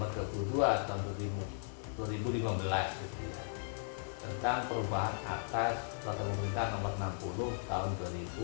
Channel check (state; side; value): silent; right; digital silence